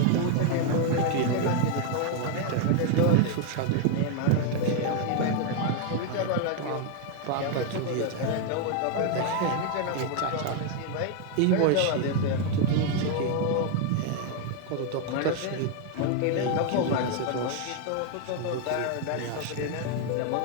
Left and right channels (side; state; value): both; different; correlation 0.01